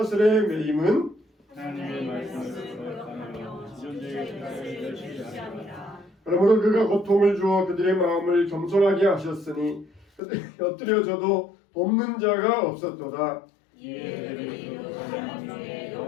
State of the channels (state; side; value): drops out; right; at 10.2 s